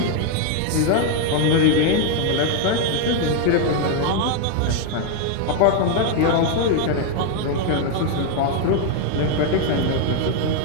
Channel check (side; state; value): both; different; correlation 0.01